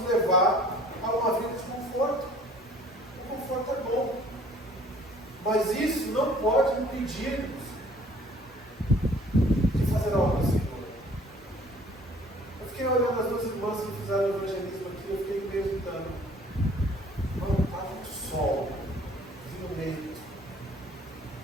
levar a uma vida de conforto. O conforto é bom, mas isso não pode impedir-nos de fazer algo ao Senhor. Eu fiquei olhando as duas irmãs que fizeram o evangelismo aqui, eu fiquei meditando. Mano, está muito sol, vindo meio.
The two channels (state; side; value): normal; both; correlation 0.54